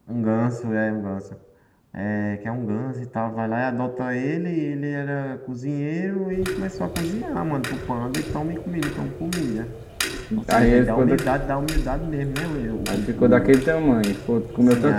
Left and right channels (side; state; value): both; identical; correlation 1.00